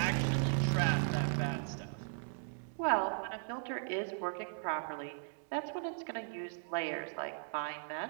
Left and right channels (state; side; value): silent; left; digital silence